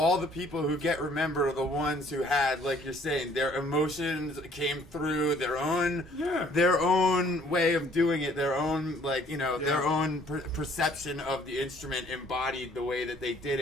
the people who get remembered are the ones who had, like you're saying, their emotions came through, their own way of doing it, their own their own perception of the instrument embodied the way that they did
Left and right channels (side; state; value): both; normal; correlation 0.59